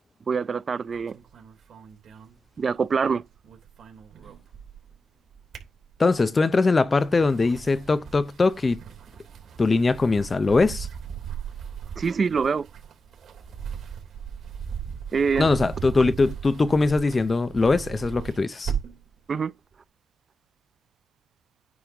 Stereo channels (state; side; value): normal; both; correlation 0.91